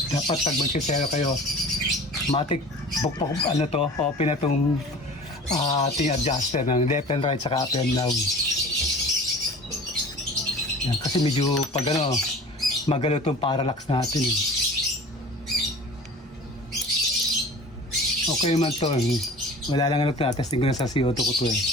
dapat pag magsisero kayo, matik bukbok ano to, open na itong ating adjuster ng left and right saka up and down. Yan, kasi medyo pag ano, magalo itong parallax natin. Okay man to. Wala lang ano to. Testing ko na sa CO2 ko to eh.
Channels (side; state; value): both; normal; correlation 0.41